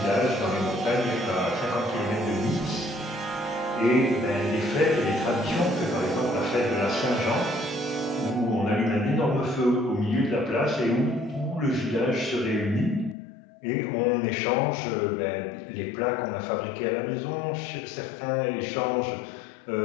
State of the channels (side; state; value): right; drops out; at 13.2 s